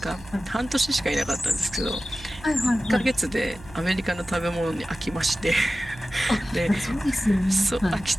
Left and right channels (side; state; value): right; noise; hum, 19 dB below the sound